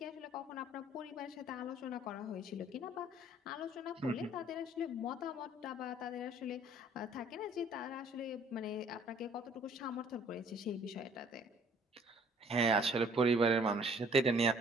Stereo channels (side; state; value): both; normal; correlation 0.57